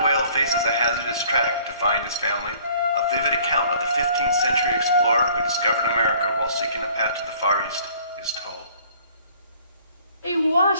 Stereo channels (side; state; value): both; inverted; correlation -0.55